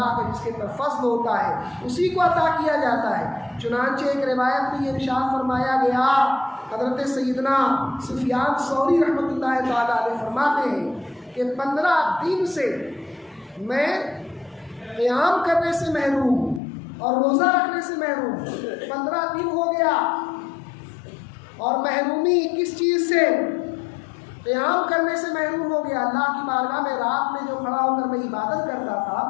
کا جس کے پر فضل ہوتا ہے اسی کو عطا کیا جاتا ہے۔ چنانچہ ایک روایت میں یہ ارشاد فرمایا گیا، حضرت سیدنا سفیان ثوری رحمۃ اللہ تعالیٰ علیہ فرماتے ہیں کہ 15 دن سے میں قیام کرنے سے محروم ہوں اور روزہ رکھنے سے محروم ہوں۔ 15 دن ہو گیا، اور محرومی کس چیز سے؟ قیام کرنے سے محروم ہو گیا۔ اللہ کی بارگاہ میں رات میں جو کھڑا ہو کر میں عبادت کرتا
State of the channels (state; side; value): drops out; right; at 16.6 s